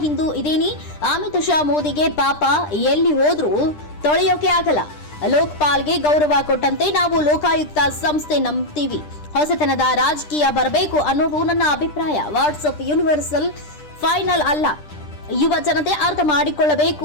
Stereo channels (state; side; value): late; right; 10 ms